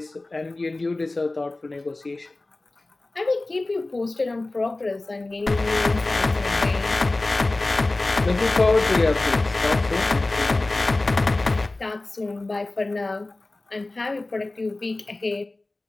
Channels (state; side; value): quieter; right; 3.0 dB